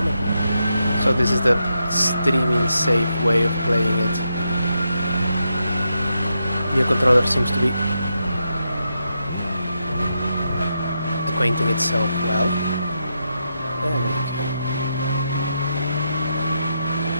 on. So this is the streaming safe way of playing it. New controller seems to be acquainting itself well. There we go.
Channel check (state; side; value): inverted; both; correlation -0.84